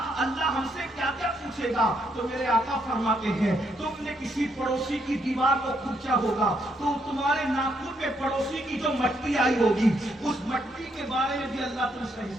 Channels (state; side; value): normal; both; correlation 0.75